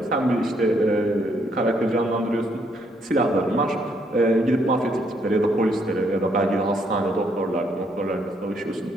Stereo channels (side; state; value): both; normal; correlation 0.71